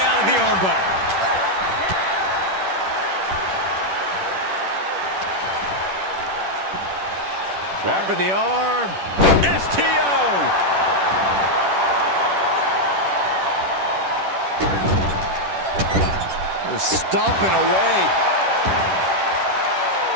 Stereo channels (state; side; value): late; left; 10 ms